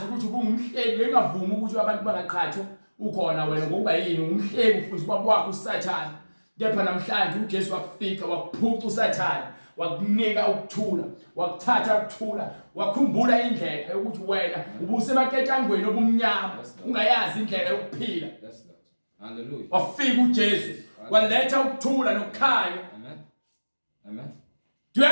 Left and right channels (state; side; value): inverted; both; correlation -1.00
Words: ukuthi ubungumhlebi engavumi ukuthi abantu bangaqhathwa ukhona wena ngokuba yini umhlebi futhi ubaba wakho uSathane. Kepha namhlanje uJesu wakufika wakuphuca uSathane wakunika ukuthula wakuthatha ukuthula wakhumbula indlela yokuthi wena ubusemaketshangweni obumnyama ungayazi indlela yokuphila. Yes, Lord. Hallelujah. Wafika uJesu waletha ukuthula nokukhanya. Amen. Amen. Do you